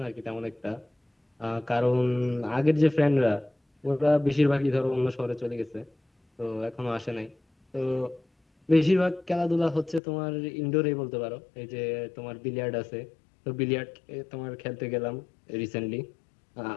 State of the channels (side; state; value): right; drops out; at 10.0 s